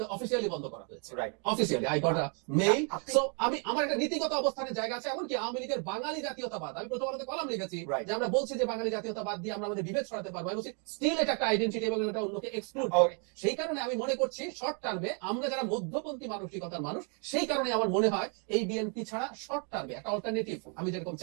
অফিসিয়ালি বন্ধ করা হয়েছে, officially I got a mail. So আমি, আমার একটা নীতিগত অবস্থানের জায়গা আছে। এমনকি আওয়ামী লীগের বাঙালি জাতীয়তাবাদ, আমি প্রথম আলোতে কলাম লিখেছি যে আমরা বলছি যে বাঙালি জাতীয়তাবাদ দিয়ে আমরা আমাদের বিভেদ ছড়াতে পারবো, আমি বলছি স্টিল এটা একটা আইডেন্টিটি এবং এটা অন্যকে এক্সক্লুড করে। সেই কারণে আমি মনে করছি শর্ট টার্মে আমরা যারা মধ্যপন্থী মানসিকতার মানুষ, সেই কারণে আমার মনে হয় এই বিএনপি ছাড়া শর্ট টার্মে একটা অল্টারনেটিভ আমি যেরকম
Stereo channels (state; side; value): quieter; left; 38.5 dB